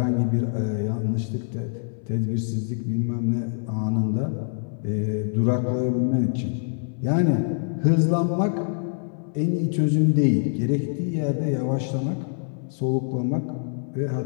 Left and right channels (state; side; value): silent; right; 62 dB below the other